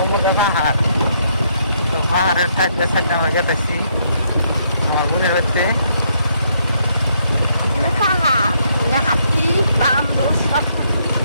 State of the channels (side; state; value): both; inverted; correlation -0.73